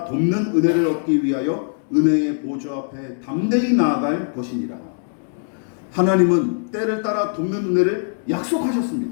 돕는 은혜를 얻기 위하여 은혜의 보좌 앞에 담대히 나아갈 것이니라. 하나님은 때를 따라 돕는 은혜를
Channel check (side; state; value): right; silent; 65 dB below the other